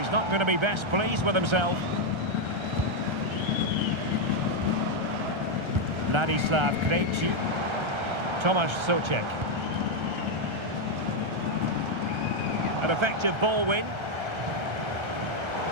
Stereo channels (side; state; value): left; late; 1.3 ms